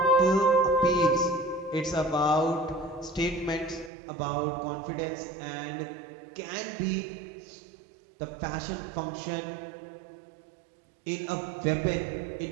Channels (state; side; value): drops out; left; at 3.9 s